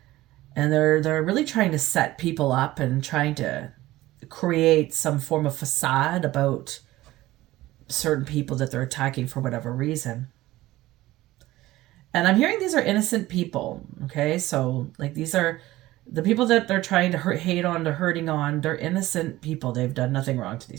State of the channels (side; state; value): left; quieter; 17.0 dB